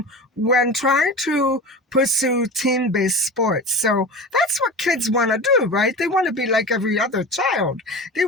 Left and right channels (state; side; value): normal; both; correlation 0.31